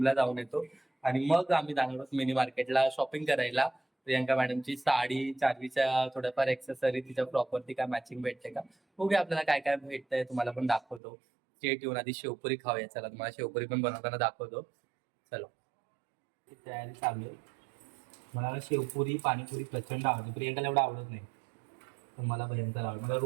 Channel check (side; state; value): left; drops out; at 11.0 s